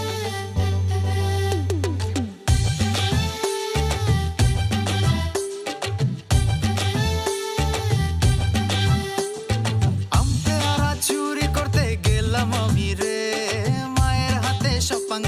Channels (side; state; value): both; identical; correlation 1.00